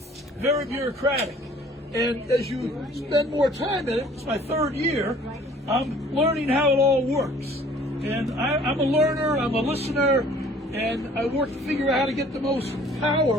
bureaucratic. And as you spend more time in it, it's my 3rd year, I'm learning how it all works. And I'm a learner, I'm a listener, and I work to figure out how to get the most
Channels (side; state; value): both; normal; correlation 0.53